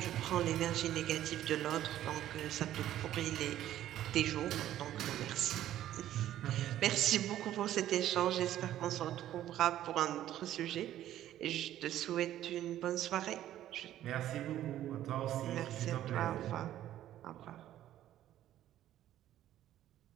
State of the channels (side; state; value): left; quieter; 12.6 dB